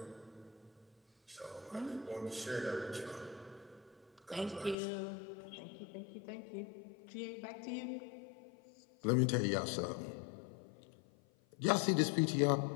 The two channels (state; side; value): drops out; right; at 4.8 s